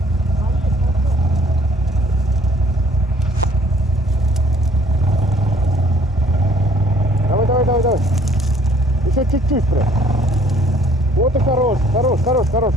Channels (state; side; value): normal; both; correlation 0.59